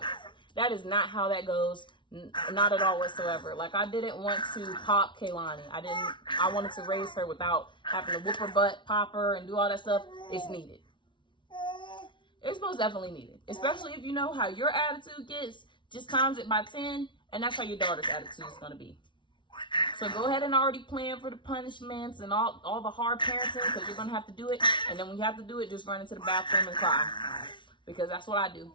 that is not how that goes. Not at all whatsoever. Like, I didn't want to pop Kaylani. I wanted to raise her without having to whoop her butt, pop her, and do all that stuff. It's needed. It's most definitely needed. Especially if you know how your attitude gets, just times it by 10, and that's how your daughter's attitude is going to be. So go ahead and already plan for the punishments and all the hard parenting, because you're going to have to do it. And then when you have to do it, just run into the bathroom and cry. Because that's what I do.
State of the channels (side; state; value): right; late; 0.24 ms